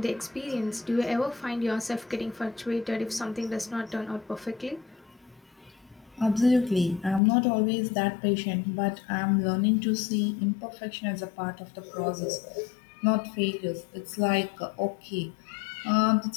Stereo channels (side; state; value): right; drops out; at 7.2 s